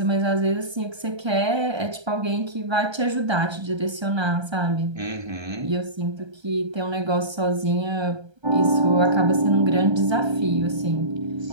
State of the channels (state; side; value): late; left; 1.3 ms